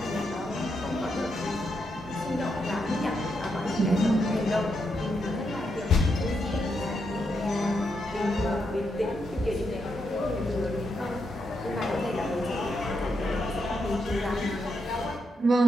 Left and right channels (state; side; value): normal; both; correlation 0.81